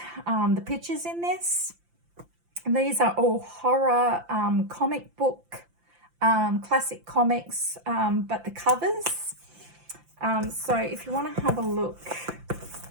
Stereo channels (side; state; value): left; late; 5.8 ms